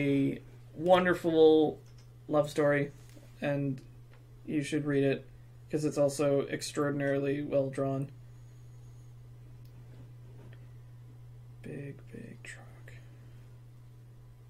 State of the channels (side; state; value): both; identical; correlation 1.00